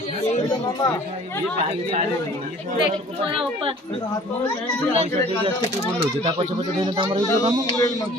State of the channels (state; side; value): normal; both; correlation 0.50